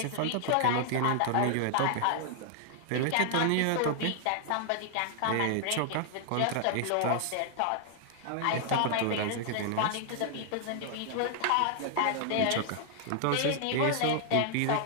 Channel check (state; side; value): different; both; correlation 0.00